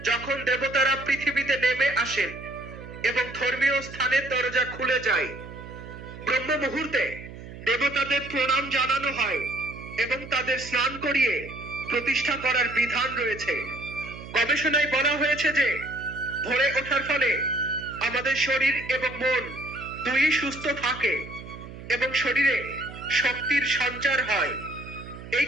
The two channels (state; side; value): noise; right; hum, 13 dB below the sound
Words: যখন দেবতারা পৃথিবীতে নেমে আসেন এবং ধর্মীয় স্থানের দরজা খুলে যায়। ব্রহ্ম মুহূর্তে দেবতাদের প্রণাম জানানো হয় এবং তাদের স্নান করিয়ে প্রতিষ্ঠা করার বিধান রয়েছে। গবেষণায় বলা হয়েছে যে ভোরে ওঠার ফলে আমাদের শরীর এবং মন দুই সুস্থ থাকে এবং শরীরে শক্তির সঞ্চার হয়। এই